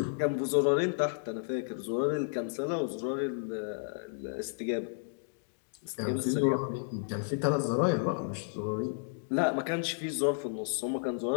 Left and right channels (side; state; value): right; silent; digital silence